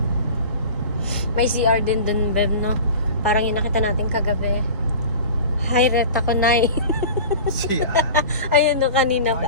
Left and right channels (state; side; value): inverted; both; correlation -0.37